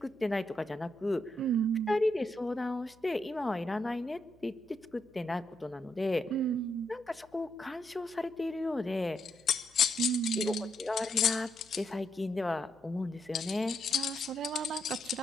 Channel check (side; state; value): left; noise; hum, 30 dB below the sound